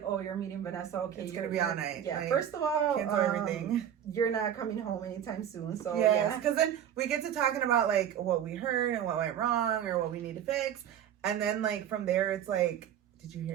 oh, you're meeting Vanessa. Okay, it's going to be all night. Yeah, like, first of all, cancel everything. You're not coming home anytime soon. So, yes, because then we get to talking about, like, what we heard and what went wrong or what we need to fix. And then, like, from there, it's like, did you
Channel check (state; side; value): quieter; left; 9.7 dB